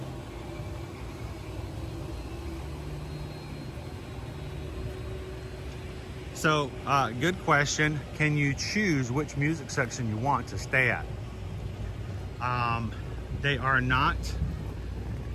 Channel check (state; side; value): identical; both; correlation 1.00